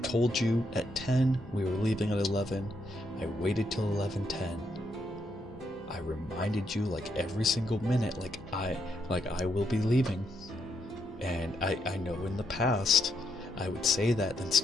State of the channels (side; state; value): both; normal; correlation 0.78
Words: told you at 10, we were leaving at 11. I waited till 11:10. I reminded you like every single minute, like I will be leaving. And I know in the past I would say that, then